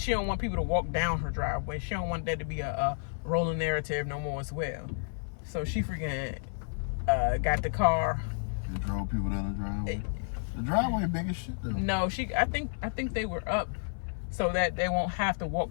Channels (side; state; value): right; silent; 57 dB below the other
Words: want people to walk down her driveway. She don't want that to be a rolling narrative no more as well. So she freaking got the car. You drove people down the driveway. The driveway big as shit though. No, I think they were up so that they won't have to